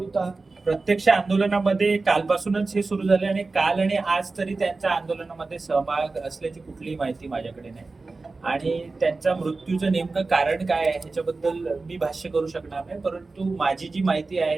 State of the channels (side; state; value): left; quieter; 3.7 dB